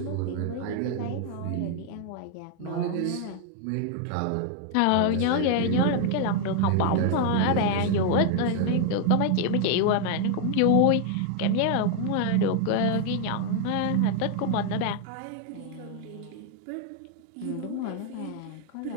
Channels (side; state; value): both; different; correlation 0.00